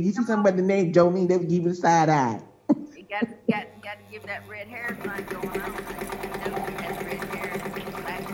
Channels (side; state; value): both; identical; correlation 1.00